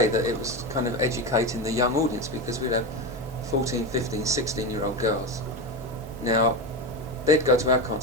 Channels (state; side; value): normal; both; correlation 0.18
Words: that it was kind of educating the young audience, because we'd have 14, 15, 16-year-old girls. Now, they'd go to our